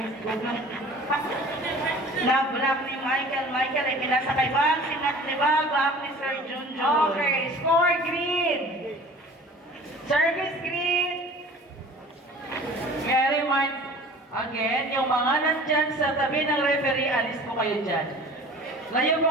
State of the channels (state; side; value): normal; both; correlation 0.44